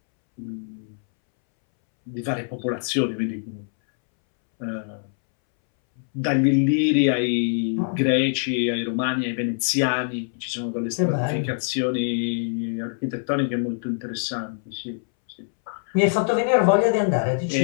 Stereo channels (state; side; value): silent; right; 63 dB below the other